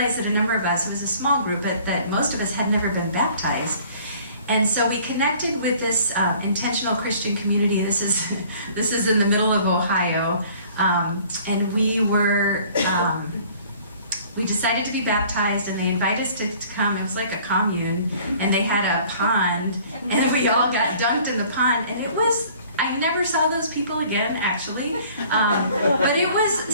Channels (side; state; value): both; inverted; correlation -0.53